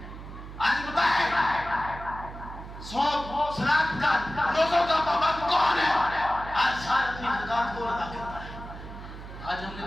آج بتائیں صوم صلاۃ کا روزوں کا پابند کون ہے؟ آج سارا اپنی زکات کو ادا کرتا ہے۔ آج ہم نے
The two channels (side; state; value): right; noise; hum, 12 dB below the sound